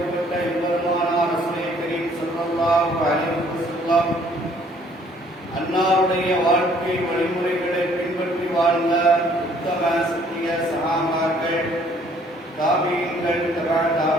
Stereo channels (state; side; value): normal; both; correlation 0.61